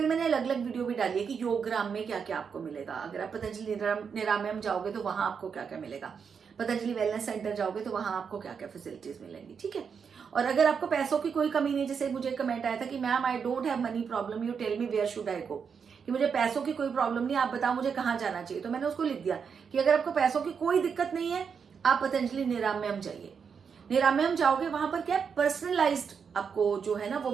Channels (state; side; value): quieter; left; 6.4 dB